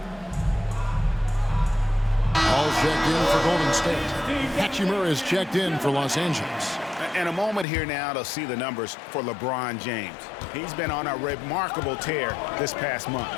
in for Golden State. Hachimura is checked in for Los Angeles. And a moment here now to see the numbers for LeBron James. He's been on a remarkable tear this past month.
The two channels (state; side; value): drops out; right; at 7.7 s